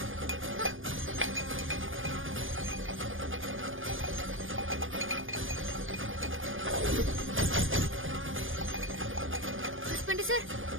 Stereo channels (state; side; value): late; left; 0.58 ms